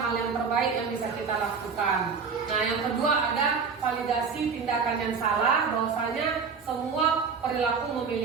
hal yang terbaik yang bisa kita lakukan. Nah, yang kedua ada validasi tindakan yang salah, bahwasanya semua perilaku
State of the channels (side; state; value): left; quieter; 5.6 dB